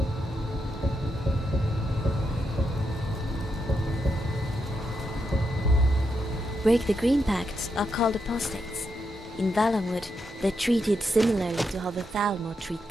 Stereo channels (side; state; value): both; normal; correlation 0.83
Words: Break the Green Pact are called apostates. In Valenwood, they're treated similarly to how the Thalmor treat